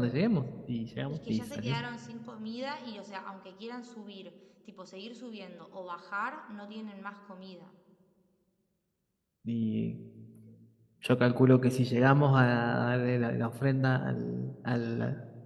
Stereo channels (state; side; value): identical; both; correlation 1.00